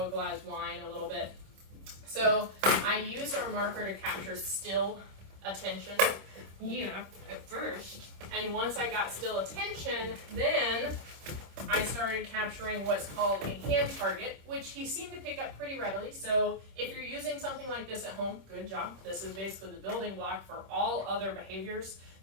whine a little bit. So I used our marker to capture still attention, at first. And once I got still attention, then I started capturing what's called a hand target, which he seemed to pick up pretty readily. So if you're using something like this at home, good job. This is basically the building block for all other behaviors,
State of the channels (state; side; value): late; left; 26 ms